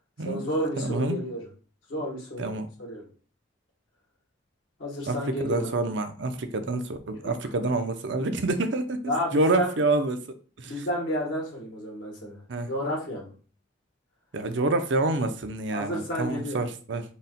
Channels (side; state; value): both; normal; correlation 0.15